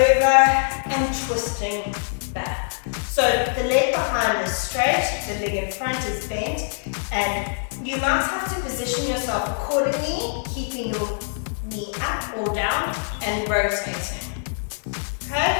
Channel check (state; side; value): silent; right; digital silence